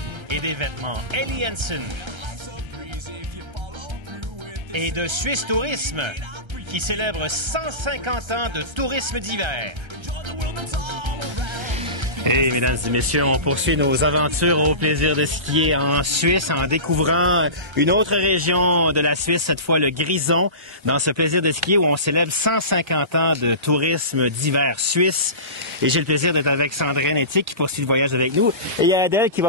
et des vêtements Ellie Hansen. Et de Suisse Tourisme, qui célèbre 150 ans de tourisme d'hiver. Et mesdames et messieurs, on poursuit nos aventures au plaisir de skier en Suisse en découvrant une autre région de la Suisse, cette fois le Grison, dans ce plaisir de skier où on célèbre 150 ans de tourisme d'hiver suisse. Et j'ai le plaisir d'être avec Sandrine Ethique qui poursuit le voyage avec nous. Et il y a Adèle qui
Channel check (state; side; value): late; left; 1.3 ms